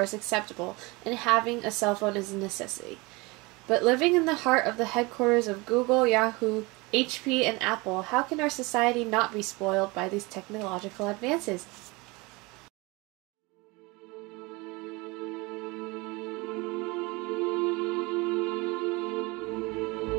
acceptable, and having a cell phone is a necessity. But living in the heart of the headquarters of Google, Yahoo, HP, and Apple, how can our society not be spoiled by these technological advances?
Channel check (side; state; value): left; quieter; 25.0 dB